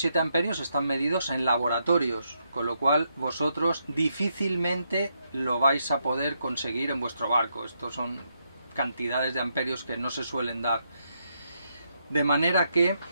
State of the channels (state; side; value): inverted; both; correlation -0.79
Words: amperios están medidos en laboratorios, con lo cual vosotros difícilmente lo vais a poder conseguir en vuestro barco. Estos son cantidades de amperios que no se suelen dar. De manera que